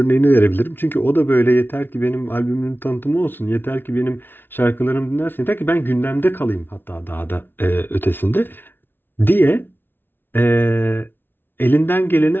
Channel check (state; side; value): late; right; 0.10 ms